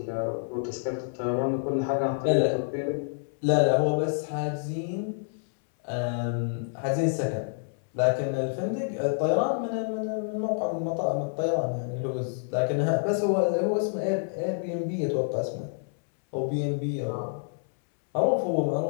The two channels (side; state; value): right; silent; 59 dB below the other